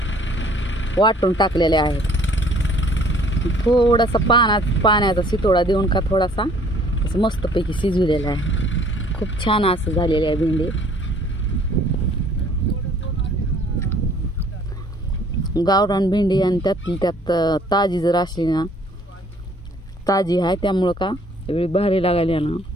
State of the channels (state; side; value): normal; both; correlation 0.57